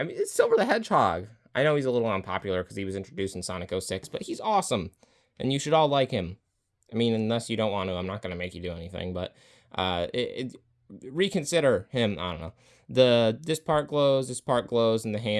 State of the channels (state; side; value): identical; both; correlation 1.00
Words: mean, it's Silver the Hedgehog. I know he's a little unpopular because he was introduced in Sonic 06, but he's awesome. And you should all like him. I mean, unless you don't want to, I'm not going to make you do anything, but reconsider him. I don't know. This part glows, and the